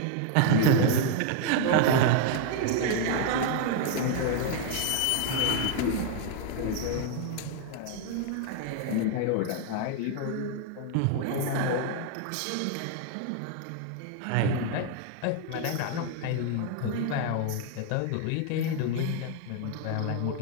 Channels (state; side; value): different; both; correlation 0.00